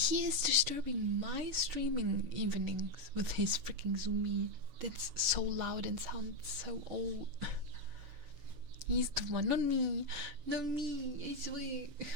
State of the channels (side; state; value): left; late; 6.8 ms